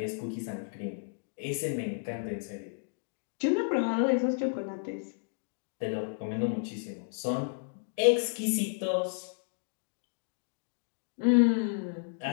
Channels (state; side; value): silent; right; digital silence